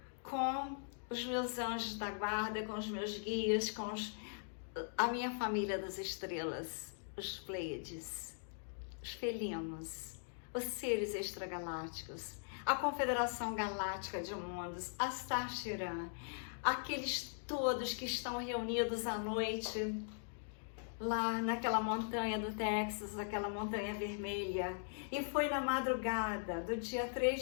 com os meus anjos da guarda, com os meus guias, com a minha família das estrelas, os Pleiades, os felinos, os seres extragalácticos, a Confederação Galáctica de Mundos, a Star Chiran, aqueles todos que estão reunidos à noite lá naquela montanha do Texas, aquela montanha vermelha. E foi na madrugada do dia 3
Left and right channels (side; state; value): right; silent; digital silence